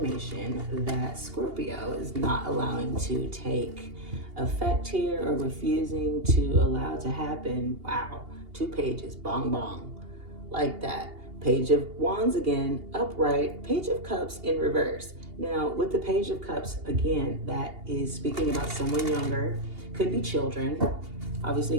that Scorpio is not allowing to take effect here or refusing to allow to happen? Wow, 2 pages, bong bong, like that. Page of Wands again, upright, Page of Cups in reverse. Now, with the Page of Cups, again, that is speaking about someone younger, could be children. Obviously,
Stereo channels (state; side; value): late; left; 2.8 ms